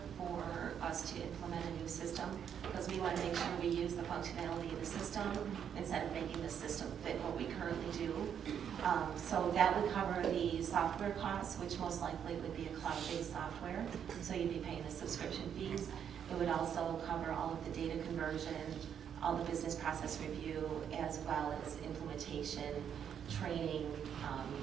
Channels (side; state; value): left; quieter; 8.4 dB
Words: for us to implement a new system, because we want to make sure we use the functionality of the system instead of making the system fit what we currently do. So that would cover the software costs, which most likely would be a cloud-based software, so you'd be paying the subscription fees. It would also cover all of the data conversion, all the business process review, as well as implementation, training,